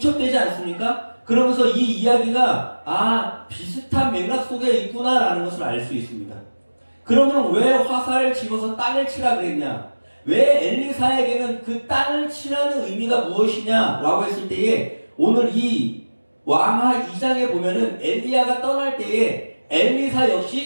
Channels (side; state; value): both; inverted; correlation -1.00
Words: 않습니까? 그러면서 이 이야기가 비슷한 맥락 속에 있구나라는 것을 알 수 있습니다. 그러면 왜 화살을 집어서 땅을 치라 그랬냐? 왜 엘리사에게는 그 땅을 치라는 의미가 무엇이냐라고 했을 때에 오늘 이 왕하 2장에 보면은 엘리야가 떠날 때에 엘리사